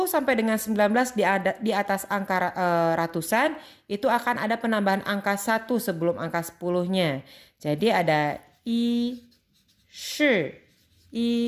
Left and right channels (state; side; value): identical; both; correlation 1.00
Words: sampai dengan 19 di atas angka ratusan, itu akan ada penambahan angka 1 sebelum angka 10-nya. Jadi ada I, Shi,